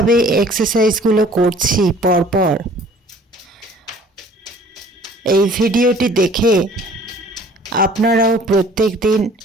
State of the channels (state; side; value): normal; both; correlation 0.53